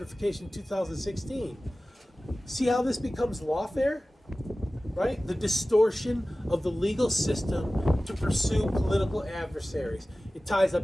in 2016. See how this becomes lawfare? Right? The distortion of the legal system to pursue political adversaries. It ties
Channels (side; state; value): both; normal; correlation 0.97